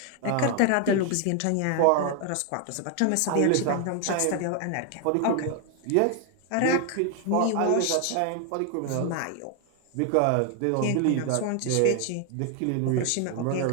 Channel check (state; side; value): different; both; correlation 0.00